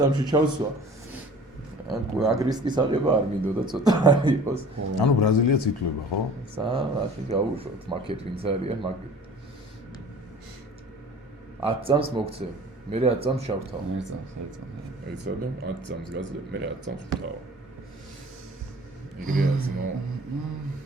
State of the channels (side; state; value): both; normal; correlation 0.45